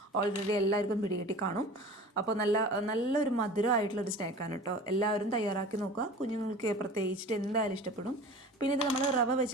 ഓൾറെഡി എല്ലാവർക്കും പിടികിട്ടി കാണും. അപ്പോൾ നല്ലൊരു മധുരമായിട്ടുള്ളൊരു സ്നാക്കാണ് കേട്ടോ. എല്ലാവരും തയ്യാറാക്കി നോക്കുക. കുഞ്ഞുങ്ങൾക്ക് പ്രത്യേകിച്ചിട്ട് എന്തായാലും ഇഷ്ടപ്പെടും. പിന്നെ ഇത് നമ്മൾ റവ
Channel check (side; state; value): both; normal; correlation 0.39